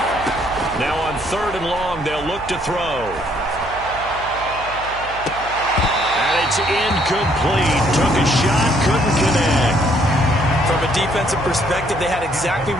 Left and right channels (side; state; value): right; noise; hum, 15 dB below the sound